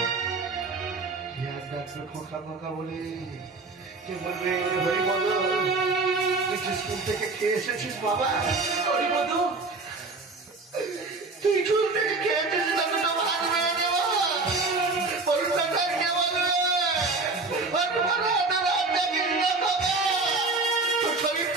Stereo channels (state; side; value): quieter; left; 3.7 dB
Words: খোকা খোকা বলে কে বলবে হরিপদ তুই স্কুল থেকে খেয়ে এসেছিস বাবা? হরিপদ তুই স্কুল থেকে খেয়ে এসেছিস না, দুটো ভাত মেরে দেবো পরীক্ষাটা কে বলবে? তোর